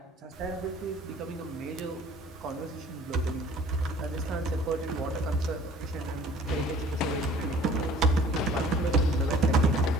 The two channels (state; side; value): normal; both; correlation 0.51